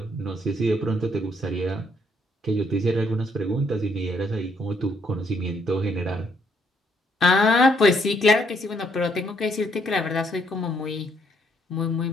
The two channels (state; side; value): normal; both; correlation 0.70